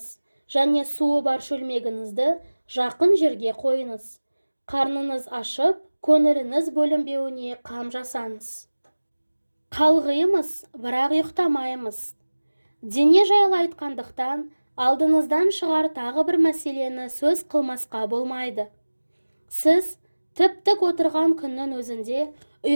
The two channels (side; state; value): both; inverted; correlation -1.00